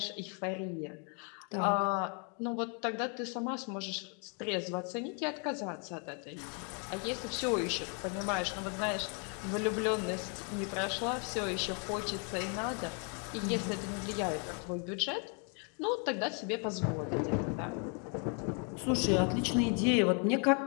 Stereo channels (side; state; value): right; quieter; 38.6 dB